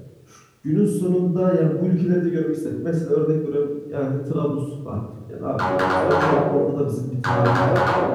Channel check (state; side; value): identical; both; correlation 1.00